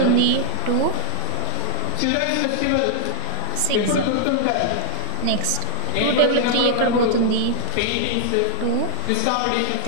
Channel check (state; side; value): different; both; correlation 0.00